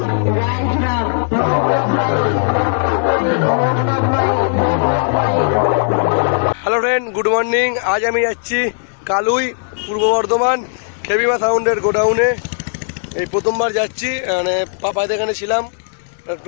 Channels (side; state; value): right; silent; digital silence